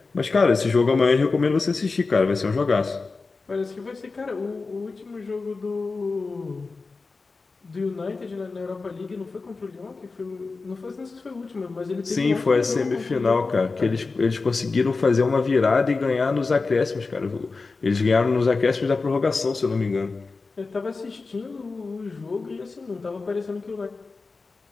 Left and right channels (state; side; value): quieter; right; 4.0 dB